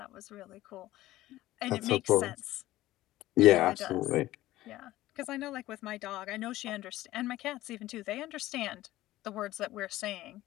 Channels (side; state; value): right; quieter; 16.0 dB